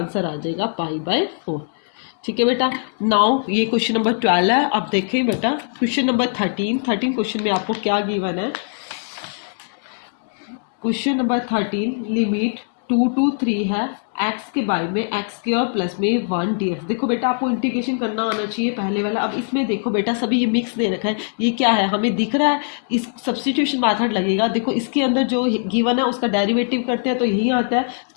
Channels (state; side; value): silent; right; digital silence